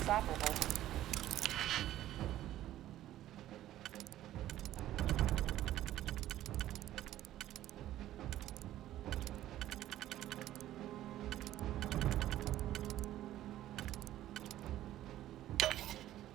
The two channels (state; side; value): quieter; left; 13.6 dB